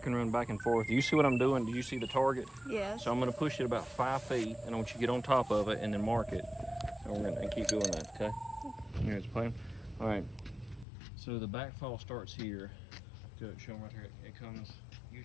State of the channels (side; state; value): right; drops out; at 10.9 s